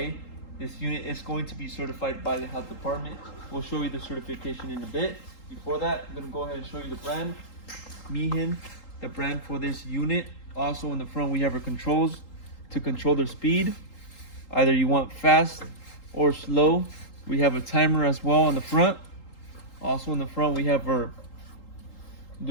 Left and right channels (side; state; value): right; late; 3.8 ms